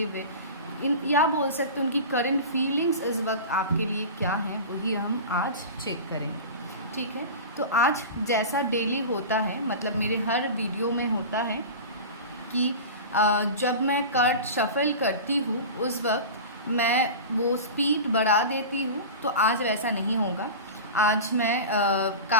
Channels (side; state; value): both; inverted; correlation -0.30